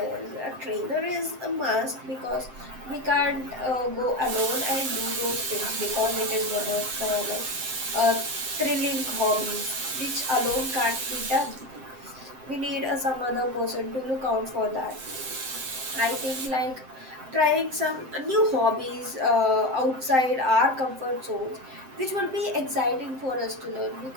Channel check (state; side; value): late; left; 7.7 ms